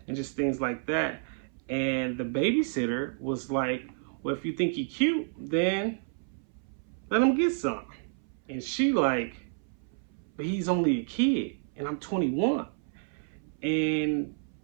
just things like that. And the babysitter was like, well, if you think he cute, then let him get some. And she like, but he's only a kid, and I'm 21. And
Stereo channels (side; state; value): left; silent; 58 dB below the other